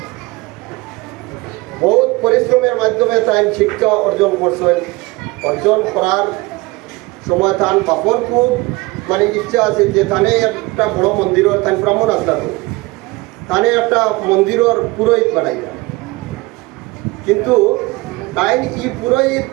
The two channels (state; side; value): quieter; left; 23.0 dB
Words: বহুত পরিশ্রমের মাধ্যমে তাই শিক্ষা অর্জন করছেন। অর্জন করার সময় তান বাপর খুব মানে ইচ্ছা আছে যে তানে একটা বড় মন্দিরের তাই ব্রাহ্মণ আসলা, তো তানে একটা মন্দিরের পুরোহিত বানাইয়া, কিন্তু তাই ই পুরোহিত